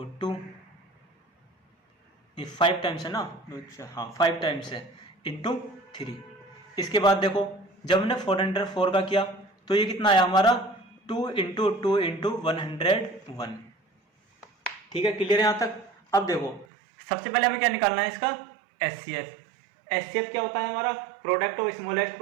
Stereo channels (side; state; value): left; drops out; at 16.7 s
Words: 2, ये 5 टाइम्स है ना, हाँ 5 टाइम्स है इंटू 3। इसके बाद देखो जब हमने 404 का किया तो ये कितना आया हमारा, 2 इंटू 2 इंटू 101। ठीक है, क्लियर है यहाँ तक। अब देखो सबसे पहले हमें क्या निकालना है, इसका एचसीएफ। एचसीएफ क्या होता है हमारा, product of smallest